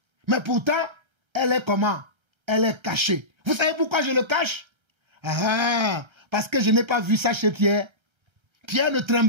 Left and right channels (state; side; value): late; left; 1.3 ms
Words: Mais pourtant, elle est comment? Elle est cachée. Vous savez pourquoi je le cache? Ah, parce que je n'ai pas vu ça chez Pierre. Pierre ne